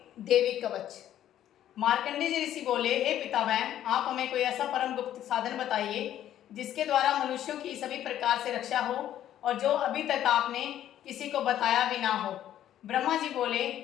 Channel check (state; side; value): quieter; right; 11.6 dB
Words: देवी कवच। मार्कंडेय जी ऋषि बोले, हे पितामह, आप हमें कोई ऐसा परम गुप्त साधन बताइए जिसके द्वारा मनुष्यों की सभी प्रकार से रक्षा हो और जो अभी तक आपने किसी को बताया भी ना हो। ब्रह्मा जी बोले,